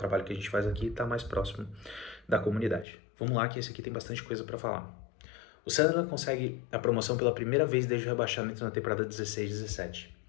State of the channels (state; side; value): drops out; right; at 2.9 s